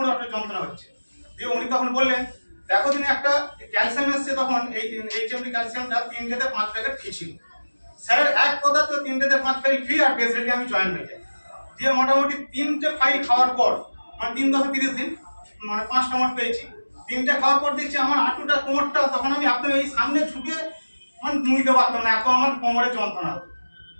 একটা যন্ত্রণা হচ্ছে। দিয়ে উনি তখন বললেন দেখো তিনি একটা ক্যালসিয়াম এসছে, তখন এই HMD ক্যালসিয়ামটা 3 থেকে 5 প্যাকেট ফ্রি ছিল। স্যারের এক কথা তো 3 থেকে 5 প্যাকেট ফ্রি, আর বেসিক্যালি আমি জয়েন হয়ে যাই। দিয়ে মোটামুটি 3টে ফাইল খাওয়ার পর 3 দশে 30 দিন 5টা মঠ পেয়েছি। 3টে খাওয়ার পর দেখছি আমার হাঁটুটা কোমরটা, তখন আমি একদম এই সামনে ঝুঁকে নুইতে পারতাম না, এত আমার কোমরে যন্ত্রণা হতো।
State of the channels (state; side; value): inverted; both; correlation -1.00